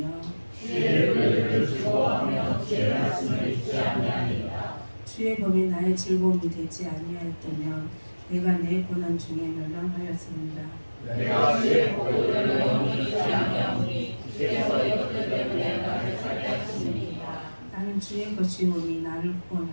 주의 의를 즐거워하며 주의 말씀을 잊지 아니하리이다. 주의 법이 나의 즐거움이 되지 아니하였다면 내가 내 고난 중에 멸망하였습니다. 내가 주의 법도를 영원히 잊지 아니하오니 주께서 이것들 때문에 나를 살게 하시니이다. 나는 주의 것이오니 나를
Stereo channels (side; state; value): both; inverted; correlation -1.00